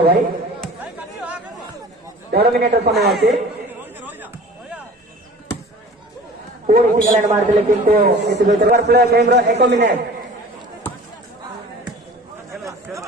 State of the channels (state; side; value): normal; both; correlation 0.43